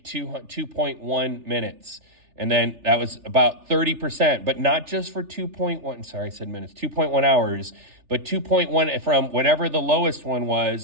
2.1 minutes? And then that was about 30%, but not just for 2.1, sorry, I said minutes, 2.1 hours, but 2.1 from whatever the lowest one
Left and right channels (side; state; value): left; late; 3.4 ms